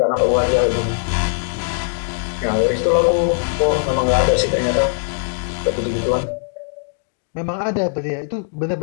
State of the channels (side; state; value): right; silent; digital silence